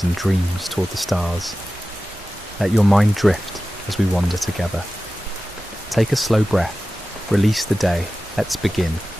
and dreams toward the stars. Let your mind drift as we wander together. Take a slow breath, release the day, let's begin.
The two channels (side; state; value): both; normal; correlation 0.95